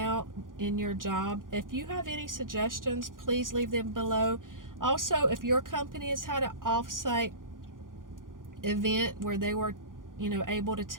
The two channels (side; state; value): left; late; 0.90 ms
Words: in your job. If you have any suggestions, please leave them below. Also, if your company has had an off-site event where they were, able to